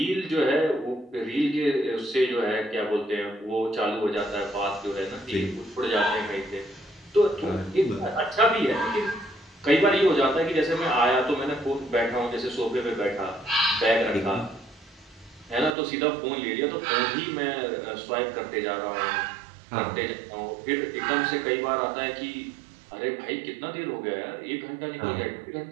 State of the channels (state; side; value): drops out; left; at 15.7 s